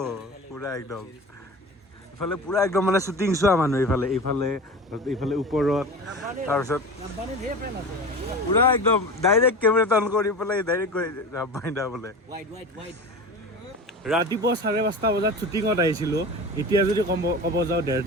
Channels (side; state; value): both; normal; correlation 0.32